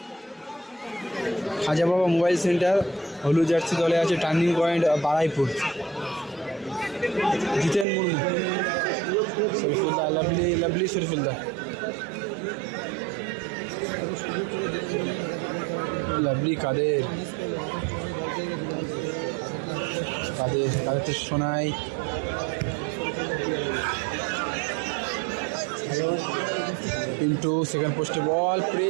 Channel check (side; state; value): left; drops out; at 7.9 s